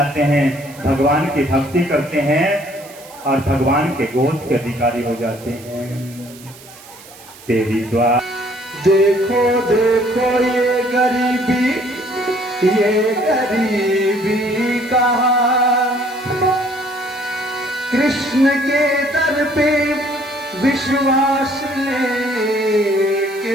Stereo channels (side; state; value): right; noise; hiss, 20 dB below the sound